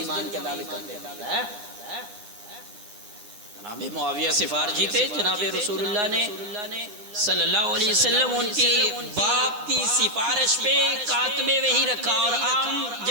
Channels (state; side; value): late; left; 9.6 ms